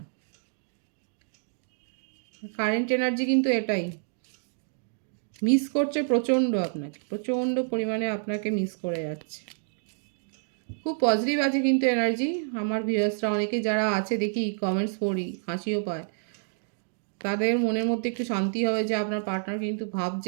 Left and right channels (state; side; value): silent; left; digital silence